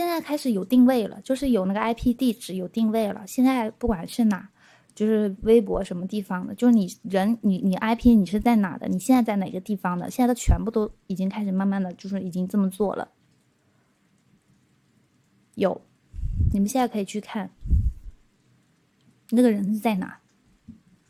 在开始有定位了，就是有那个 IP 地址有定位了。现在不管是哪，就是微博什么地方的，就是你人你 IP 你是在哪的，你现在在哪个地方的，现在都全部都已经开始慢慢的就是已经这么做了。有，你们现在可以去看那个人是在哪，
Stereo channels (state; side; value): identical; both; correlation 1.00